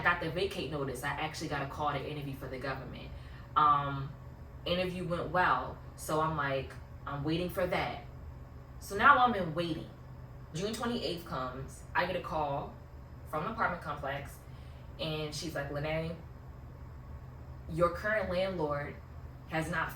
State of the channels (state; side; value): identical; both; correlation 1.00